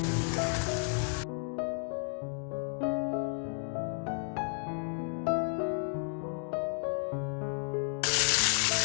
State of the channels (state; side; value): silent; right; 56 dB below the other